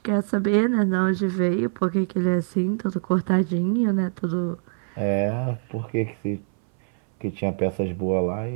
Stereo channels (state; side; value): silent; left; 61 dB below the other